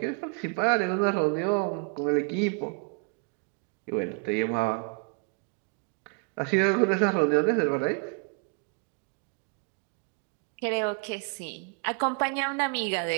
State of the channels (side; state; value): left; quieter; 36.0 dB